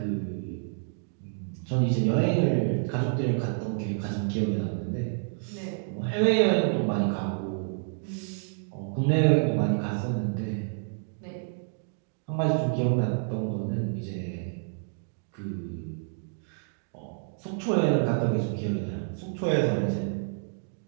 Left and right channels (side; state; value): left; silent; digital silence